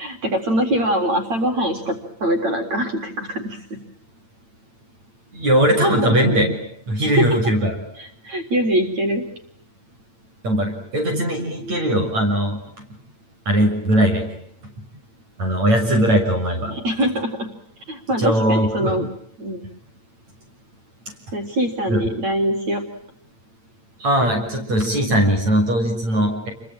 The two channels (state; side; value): late; left; 8.9 ms